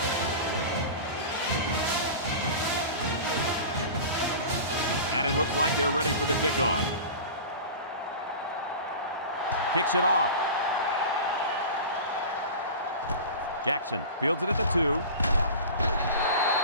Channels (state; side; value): inverted; both; correlation -0.33